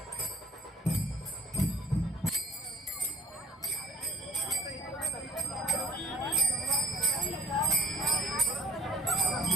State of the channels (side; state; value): both; normal; correlation 0.53